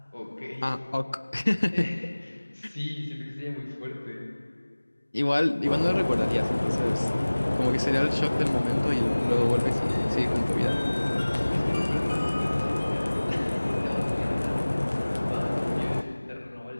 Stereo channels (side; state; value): both; inverted; correlation -1.00